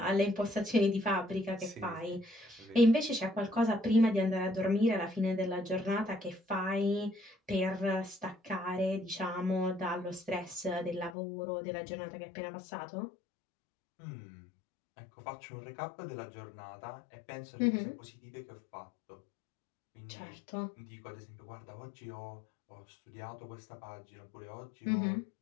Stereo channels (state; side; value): drops out; right; at 11.2 s